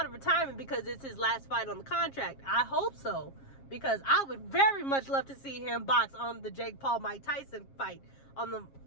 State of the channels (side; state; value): right; late; 7.4 ms